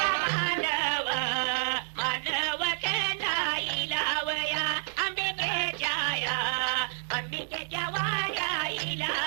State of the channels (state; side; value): silent; left; 58 dB below the other